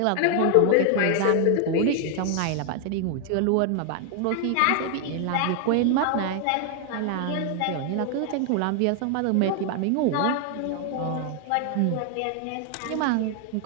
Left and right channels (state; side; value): different; both; correlation 0.00